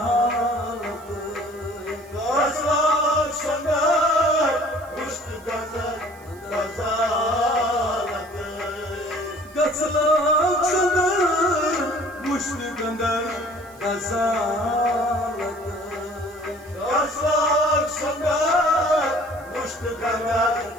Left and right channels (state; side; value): noise; right; hiss, 26 dB below the sound